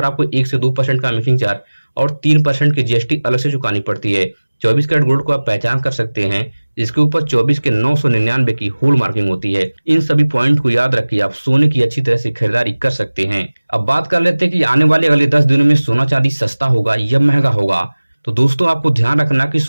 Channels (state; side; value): inverted; both; correlation -1.00